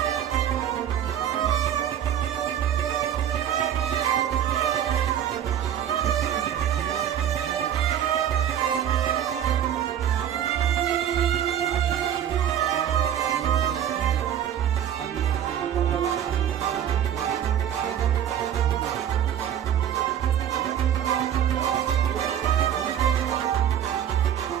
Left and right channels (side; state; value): left; quieter; 9.8 dB